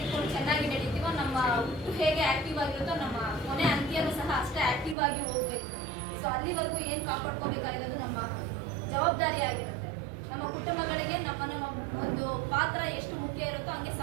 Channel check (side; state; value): left; drops out; at 5.0 s